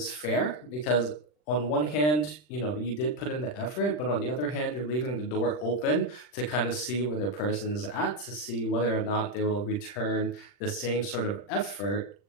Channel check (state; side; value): late; right; 40 ms